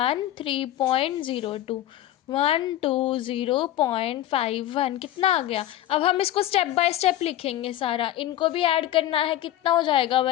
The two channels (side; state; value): right; quieter; 13.1 dB